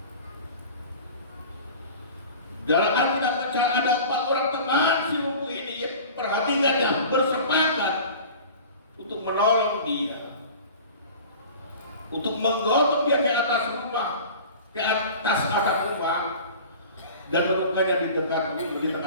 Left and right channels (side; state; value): both; inverted; correlation -0.40